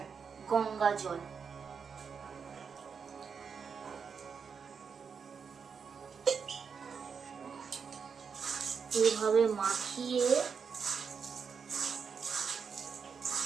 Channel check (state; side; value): quieter; left; 6.1 dB